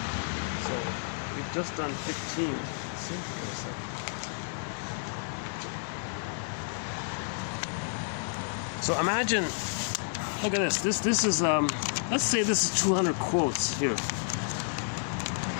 so we've just done 15. Let's see, wait a second. So imagine, look at this. This is let's say this is 200 quotes here.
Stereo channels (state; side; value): silent; right; 57 dB below the other